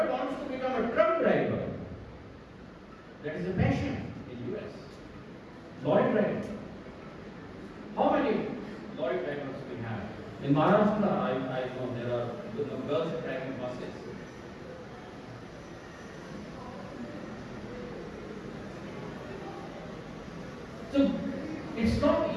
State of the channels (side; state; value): both; identical; correlation 1.00